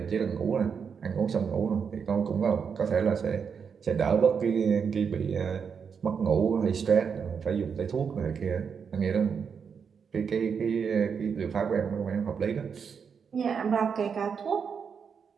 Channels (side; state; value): left; quieter; 6.5 dB